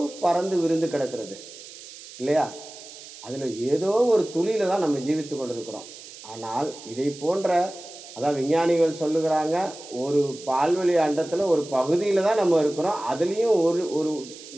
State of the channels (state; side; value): noise; right; hiss, 16 dB below the sound